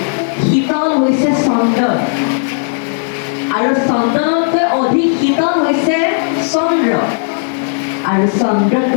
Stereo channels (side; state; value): right; silent; digital silence